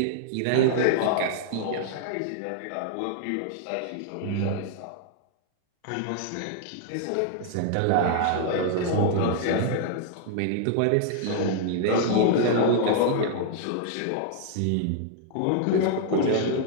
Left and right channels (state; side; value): different; both; correlation 0.00